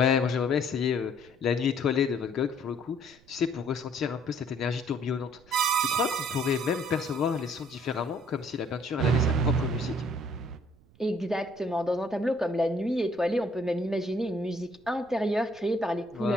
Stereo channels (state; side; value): noise; right; rumble, 28 dB below the sound